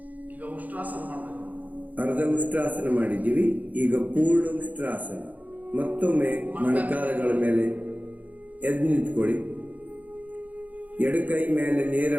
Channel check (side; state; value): left; late; 0.079 ms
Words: ಅರ್ಧ ಉಷ್ಟ್ರಾಸನ ಮಾಡಿದ್ದೀವಿ, ಈಗ ಪೂರ್ಣ ಉಷ್ಟ್ರಾಸನ. ಮತ್ತೊಮ್ಮೆ ಮೊಣಕಾಲುಗಳ ಮೇಲೆ ಎದ್ದು ನಿಂತ್ಕೊಳ್ಳಿ. ಎಡಕೈ ಮೇಲೆ ನೇರ